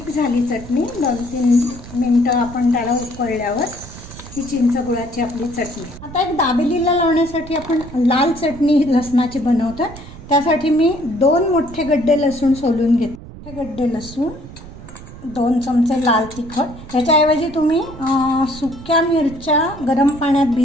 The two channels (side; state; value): right; noise; rumble, 15 dB below the sound